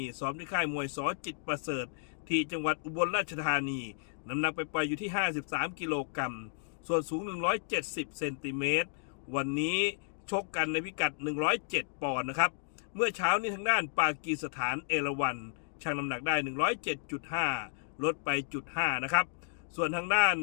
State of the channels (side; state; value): right; silent; digital silence